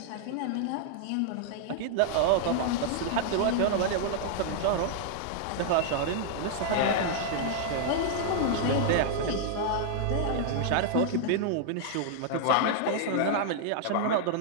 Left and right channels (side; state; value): both; different; correlation -0.01